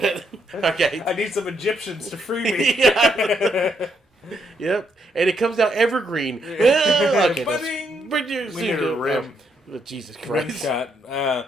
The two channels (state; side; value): normal; both; correlation 0.76